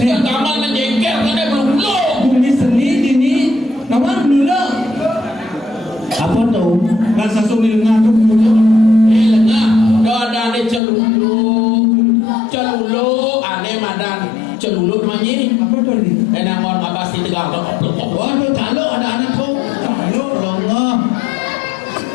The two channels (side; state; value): right; drops out; at 10.8 s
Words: kamar menjengkel karena belulu. Bumi seni dini. Nama dulu. Apa tuh? Bahasa Sumil ngadu dulu. Lengah, ada ane celulu, ane madan celulu namanya. Apa tuh ini? Enang orang abas di tegal dok. Waduh, calo ada anak kau. Calo. Lengah.